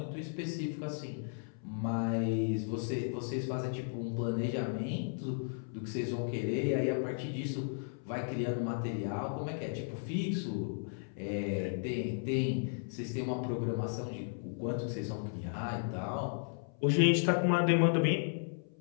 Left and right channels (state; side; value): silent; right; 55 dB below the other